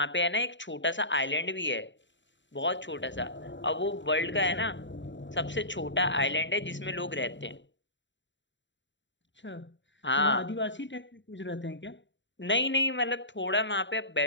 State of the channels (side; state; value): right; late; 0.54 ms